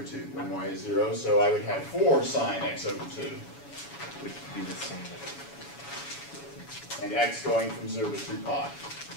2 when y is 0, so I would have 4 sine x over 2. Would be the same. And x going from 0 to 2 pi.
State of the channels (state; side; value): late; right; 7.1 ms